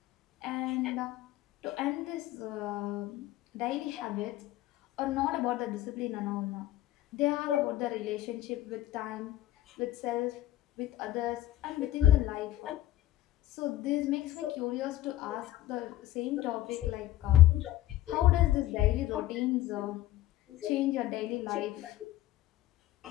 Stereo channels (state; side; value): quieter; right; 14.5 dB